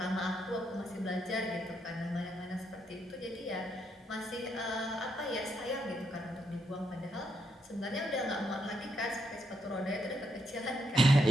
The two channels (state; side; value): normal; both; correlation 0.78